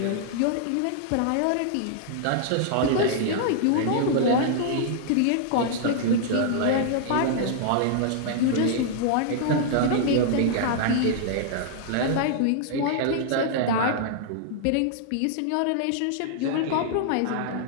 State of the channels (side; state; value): both; different; correlation -0.01